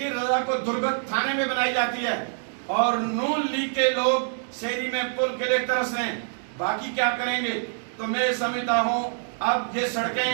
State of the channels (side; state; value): left; silent; digital silence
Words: رضا کو درگت تھانے میں بنائی جاتی ہے اور نون لیگ کے لوگ شہری میں پل کے لیے ترس رہے ہیں، باقی کیا کریں گے؟ تو میں سمجھتا ہوں اب یہ